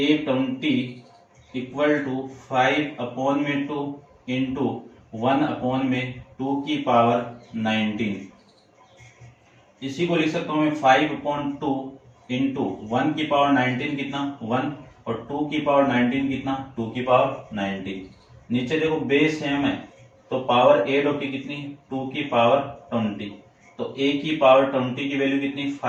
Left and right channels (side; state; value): both; identical; correlation 1.00